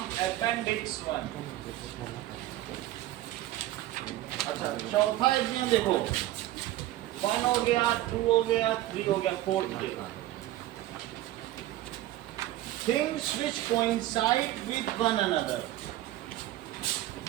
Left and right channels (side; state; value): left; quieter; 15.1 dB